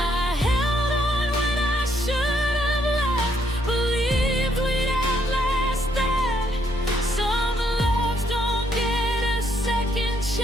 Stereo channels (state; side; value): normal; both; correlation 0.72